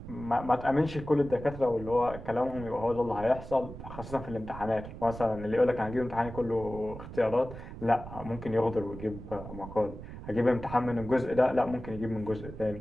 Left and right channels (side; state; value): right; noise; rumble, 12 dB below the sound